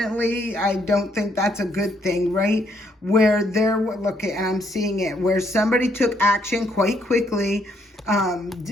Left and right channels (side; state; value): both; normal; correlation 0.71